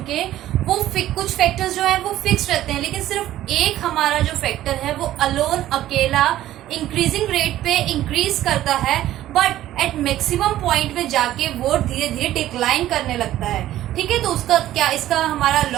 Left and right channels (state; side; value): quieter; left; 13.7 dB